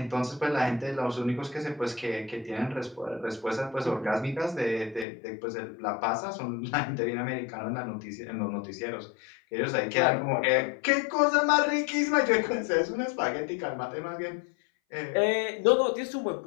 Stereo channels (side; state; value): right; drops out; at 5.1 s